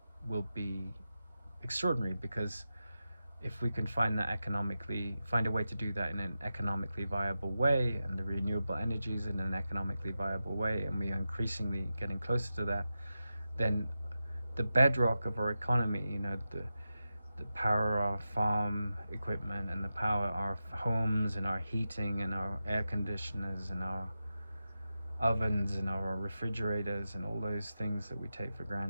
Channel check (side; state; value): both; inverted; correlation -0.91